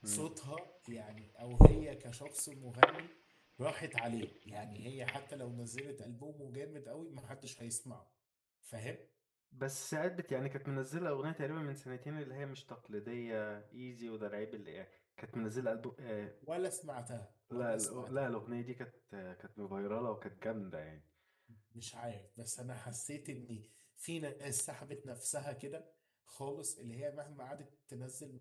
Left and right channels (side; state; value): both; identical; correlation 1.00